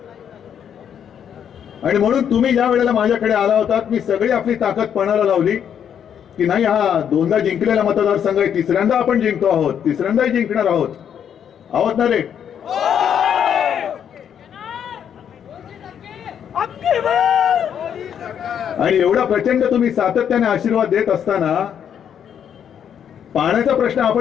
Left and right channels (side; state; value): right; quieter; 8.7 dB